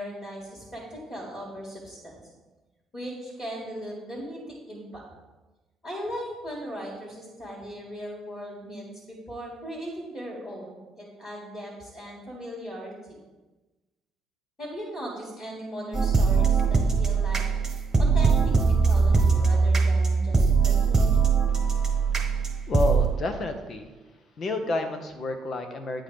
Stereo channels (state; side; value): quieter; left; 3.8 dB